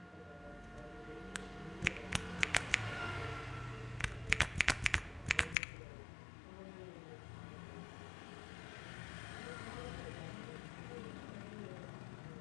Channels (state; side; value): drops out; right; at 5.6 s